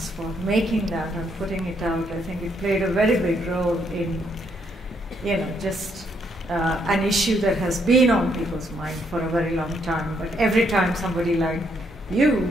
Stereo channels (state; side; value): normal; both; correlation 0.73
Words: for making that and putting it out. I think it played a very big role in, just an issue that has been on people's mind for a very long time. But every time somebody like